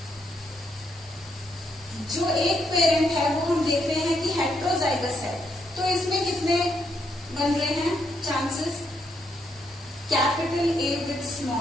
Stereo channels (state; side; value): normal; both; correlation 0.77